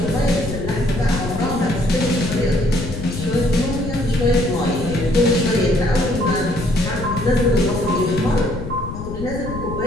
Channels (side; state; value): left; noise; rumble, 8 dB below the sound